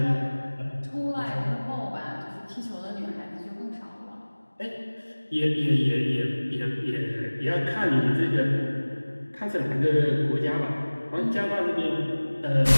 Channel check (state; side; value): inverted; both; correlation -1.00